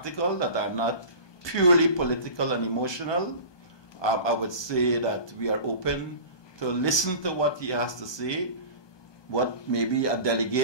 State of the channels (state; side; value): late; right; 1.2 ms